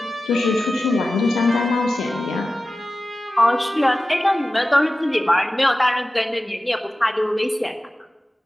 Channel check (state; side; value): normal; both; correlation 0.95